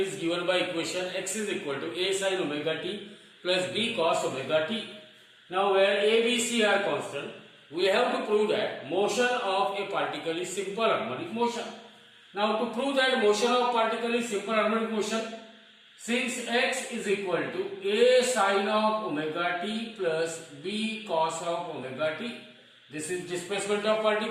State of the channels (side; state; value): both; identical; correlation 1.00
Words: given by equation x is equal to a sin omega t plus b cos omega t. Now where a, b, c are constant, we have to prove that motion of a particle is simple harmonic motion. Now to prove that motion of particle is simple harmonic motion, since x is equal to a sin of omega t plus b cos of omega t, this is displacement of